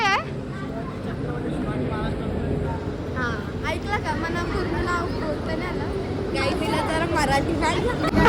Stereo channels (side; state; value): both; identical; correlation 1.00